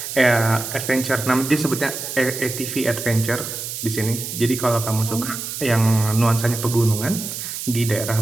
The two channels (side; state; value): right; noise; hiss, 7 dB below the sound